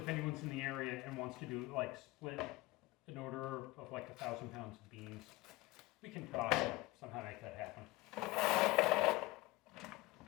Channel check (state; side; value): quieter; right; 20.5 dB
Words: anyone's in the area and wants to do like split an order of like 1,000 pounds of beans. We can talk and somehow make that happen.